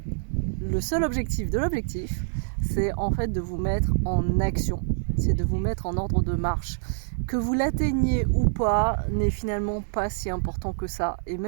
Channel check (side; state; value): left; silent; digital silence